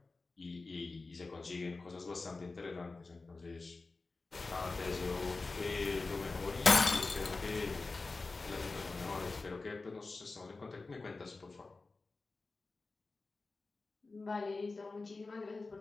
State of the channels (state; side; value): quieter; right; 3.7 dB